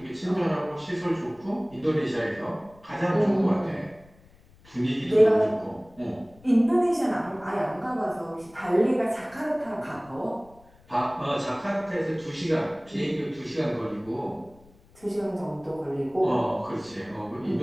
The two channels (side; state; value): left; noise; rumble, 27 dB below the sound